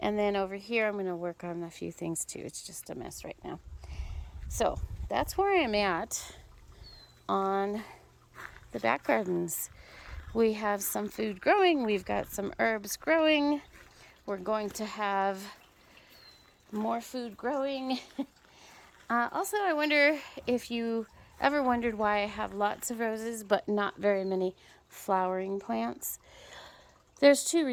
And then over here I'm going to work on a few things too. It's just a mess right now. So that's where I'm at on the back gardens. We have some food growing. We've got some herbs growing. We're going to have more food growing. Also, I wonder if you ever wondered why I have lots of roses but not very many flowering plants. There's 2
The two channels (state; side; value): identical; both; correlation 1.00